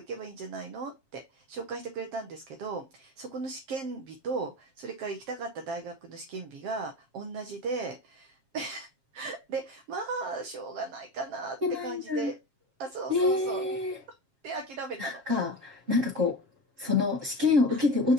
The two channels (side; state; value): left; late; 7.4 ms